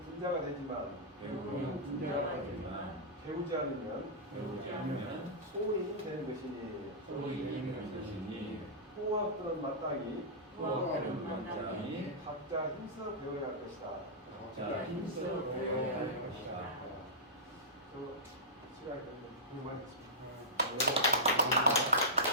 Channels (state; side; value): normal; both; correlation -0.14